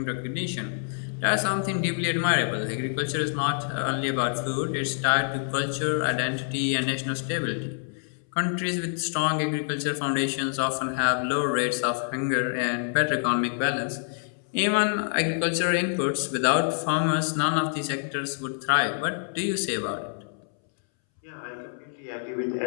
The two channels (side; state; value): right; silent; 60 dB below the other